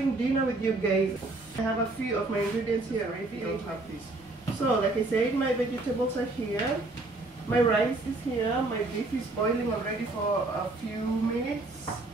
dinner with you guys. I have a few of my ingredients here already. I have this. So like I said, my vegetables are here. My rice is here. My beef is boiling already for a few minutes.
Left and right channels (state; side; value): quieter; left; 3.0 dB